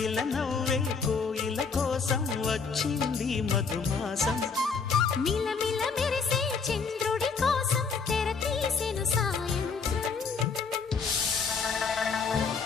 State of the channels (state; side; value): quieter; right; 5.2 dB